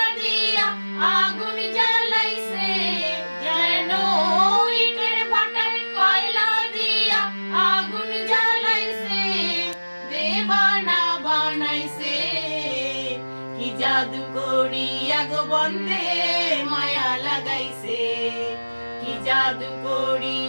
দিয়া আগুন জ্বালাইছে যেন ইটের ভাটায় কয়লা দিয়া আগুন জ্বালাইছে দেবানা বানাইছে কি জাদু করিয়া গো বন্ধে মায়া লাগাইছে কি জাদু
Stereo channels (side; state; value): both; inverted; correlation -1.00